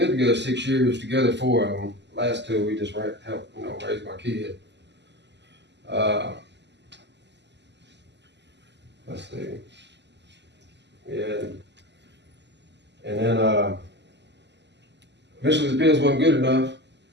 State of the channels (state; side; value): late; left; 0.51 ms